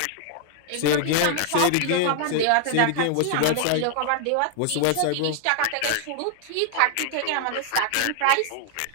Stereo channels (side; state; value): both; different; correlation 0.00